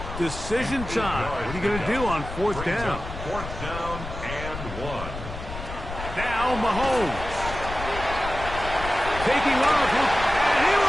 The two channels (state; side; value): noise; left; rumble, 9 dB below the sound